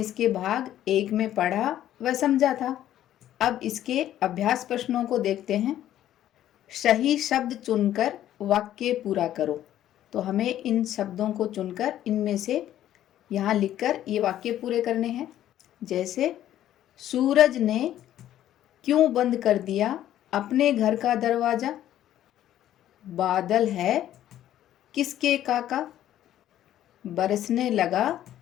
भाग 1 में पढ़ा व समझा था। अब इसके अभ्यास प्रश्नों को देखते हैं। सही शब्द चुनकर वाक्य पूरा करो। तो हमें इन शब्दों को चुनकर इनमें से यहाँ लिखकर ये वाक्य पूरे करने हैं। जैसे, सूरज ने क्यों बंद कर दिया अपने घर का दरवाजा? बादल है किसके काका? बरसने लगा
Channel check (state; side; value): quieter; right; 12.2 dB